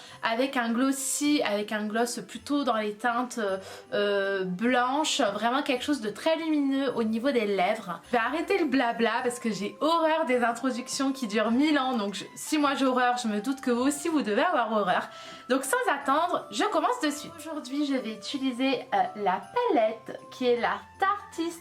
avec un gloss plutôt dans les teintes blanches, vraiment quelque chose de très lumineux au niveau des lèvres. Je vais arrêter le blabla parce que j'ai horreur des introductions qui durent 1000 ans, donc si moi j'ai horreur, je me doute que vous aussi vous devez avoir horreur. Donc sans attendre, je commence de suite. Aujourd'hui je vais utiliser la palette qui est la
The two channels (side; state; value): both; identical; correlation 1.00